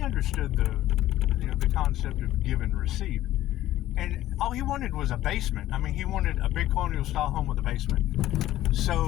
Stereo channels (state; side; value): quieter; right; 14.2 dB